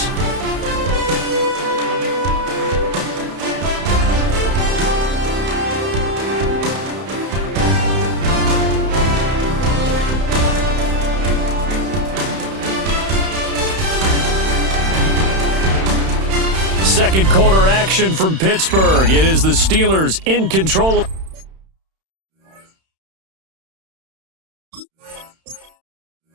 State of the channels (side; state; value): left; late; 31 ms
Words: Second quarter action from Pittsburgh. It is the Steelers in control.